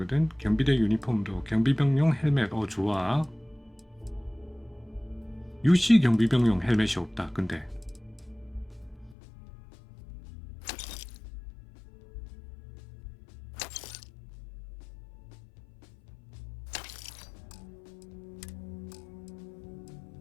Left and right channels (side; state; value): right; drops out; at 9.2 s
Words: 경비대 유니폼도 경비병용 헬멧. 좋아. 유시 경비병용 헬멧이 없다. 근데